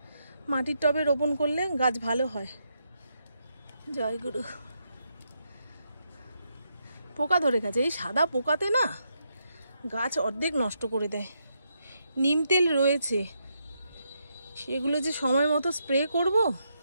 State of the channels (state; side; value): inverted; both; correlation -0.80